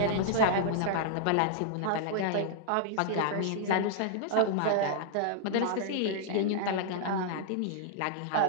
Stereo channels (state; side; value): different; both; correlation -0.01